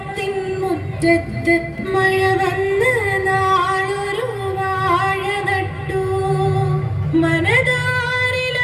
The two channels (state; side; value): identical; both; correlation 1.00